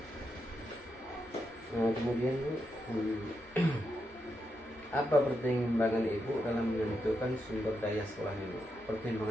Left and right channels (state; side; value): normal; both; correlation 0.84